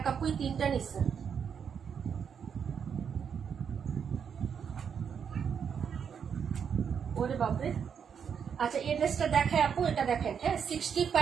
আপুই 3টা নিছে। ওরে বাপরে। আচ্ছা, এই ড্রেসটা দেখায় আপু, এটা দেখেন। হ্যাঁ,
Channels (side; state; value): left; quieter; 7.3 dB